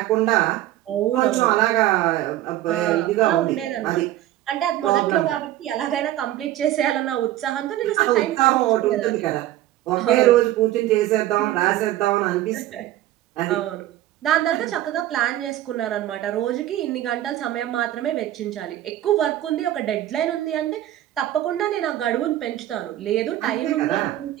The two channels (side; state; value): left; quieter; 14.0 dB